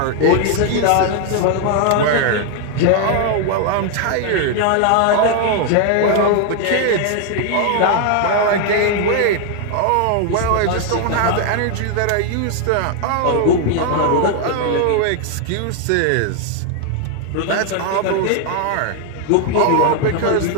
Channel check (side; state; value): both; different; correlation 0.00